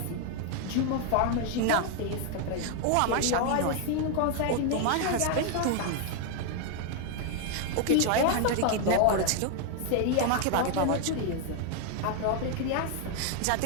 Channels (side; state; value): both; different; correlation 0.00